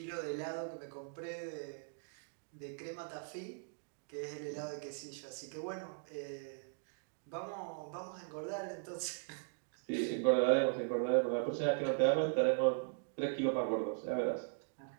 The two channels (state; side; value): silent; left; digital silence